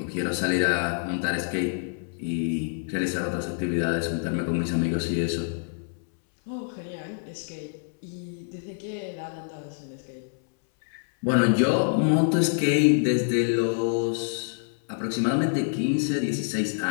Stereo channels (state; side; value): silent; right; 61 dB below the other